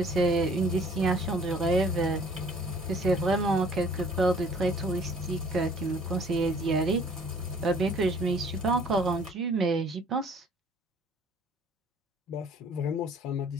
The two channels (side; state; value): both; normal; correlation 0.55